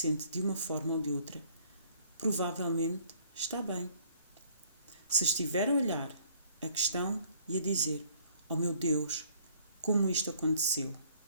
de uma forma ou de outra, provavelmente está bem. Se estiver a olhar a questão e a dizer: oh meu Deus, como isto aconteceu?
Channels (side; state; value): both; inverted; correlation -0.60